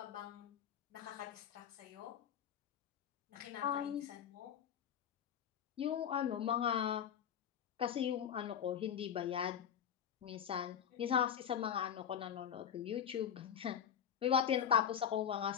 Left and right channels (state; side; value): quieter; right; 8.7 dB